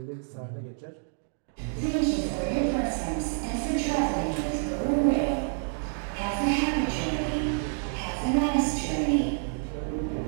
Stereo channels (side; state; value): left; silent; 59 dB below the other